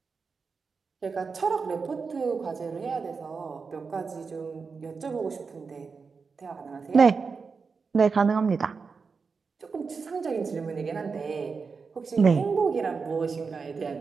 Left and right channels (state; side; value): quieter; left; 5.0 dB